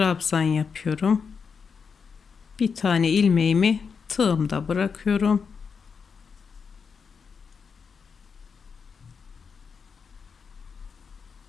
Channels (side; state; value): right; quieter; 5.9 dB